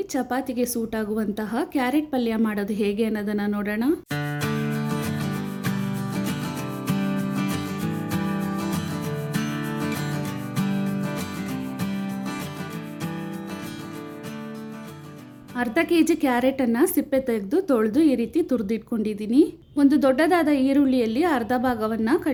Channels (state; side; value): identical; both; correlation 1.00